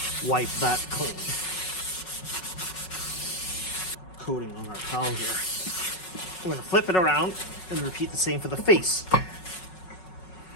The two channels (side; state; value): right; late; 5.4 ms